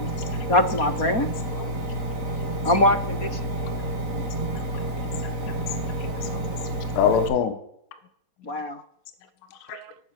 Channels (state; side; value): late; right; 4.0 ms